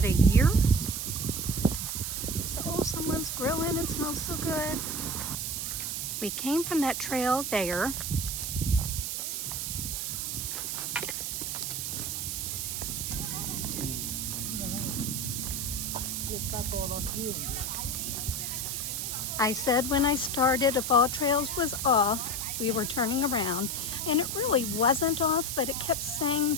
a year. So, oh, someone's grilling. It smells so good. We came from that trail there. I said when I started, if all trails was off, we were turning around, and it really wasn't off, but it kept saying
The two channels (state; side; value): noise; right; hiss, 2 dB below the sound